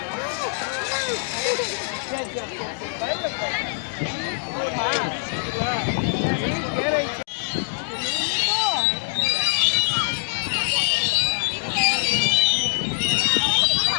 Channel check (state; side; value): silent; right; digital silence